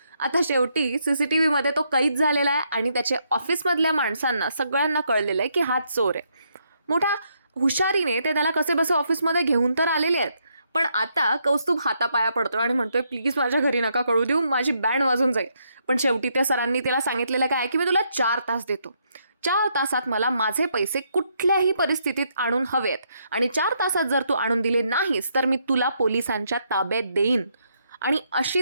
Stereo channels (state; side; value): inverted; both; correlation -0.76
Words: आता शेवटी CCTVमध्ये तो कैद झालेला आहे आणि त्याच्या ऑफिसमधल्या माणसांना सगळ्यांना कळलेलं आहे की हाच चोर आहे. मोठ्या हुशारीने ते त्याला कसे बसे ऑफिसमध्ये घेऊन तर आलेले आहेत, पण आता कौस्तुभ हातापाया पडतो आणि म्हणतोय, प्लीज माझ्या घरी नका कळू देऊ, माझी बँड वाजून जाईल. पण शेवटी त्या सरांनी त्याला सांगितलेलं काय की मी तुला 4 तास देतो. 4 तासात मला माझे पैसे कुठल्याही परिस्थितीत आणून हवेत आणि 4 तासात जर तू आणून दिले नाहीस तर मी तुला पोलिसांच्या ताब्यात देईन. आणि